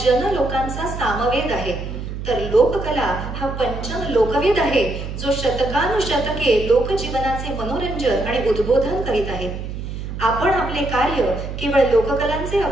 लोकांचा सामवेद आहे, तर लोककला हा पंचम लोकवेद आहे, जो शतकानुशतके लोकजीवनाचे मनोरंजन आणि उद्बोधन करीत आहे. आपण आपले कार्य केवळ लोककलांचे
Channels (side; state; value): right; noise; hum, 7 dB below the sound